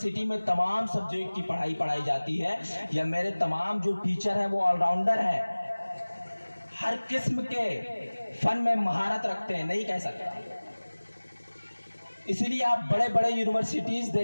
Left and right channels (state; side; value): inverted; both; correlation -1.00